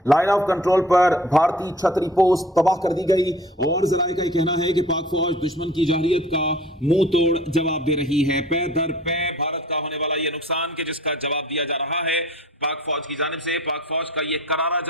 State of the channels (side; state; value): both; normal; correlation 0.48